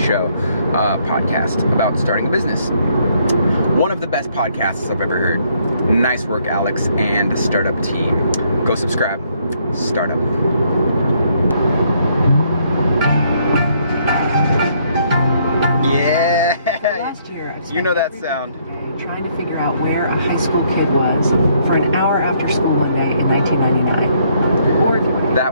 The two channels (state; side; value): inverted; both; correlation -0.69